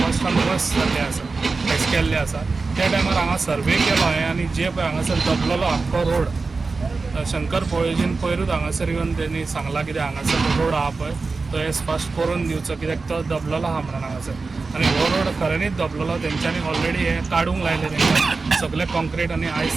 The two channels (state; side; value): quieter; left; 4.1 dB